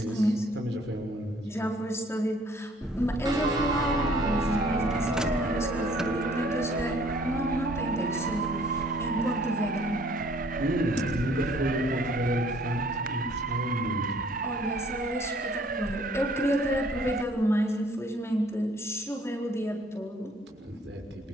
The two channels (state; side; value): normal; both; correlation 0.59